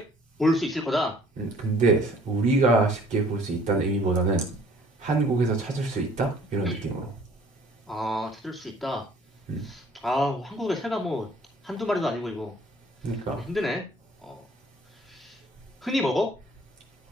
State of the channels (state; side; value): normal; both; correlation 0.56